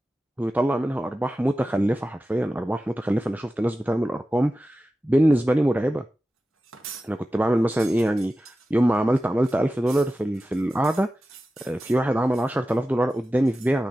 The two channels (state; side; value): normal; both; correlation 0.94